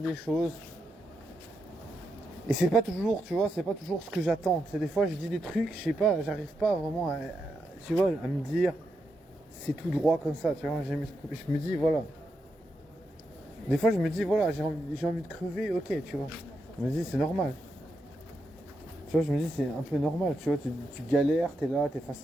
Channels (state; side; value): normal; both; correlation 0.84